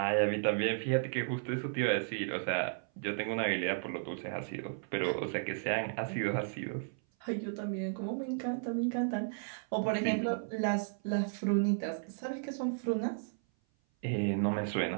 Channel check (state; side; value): silent; left; 55 dB below the other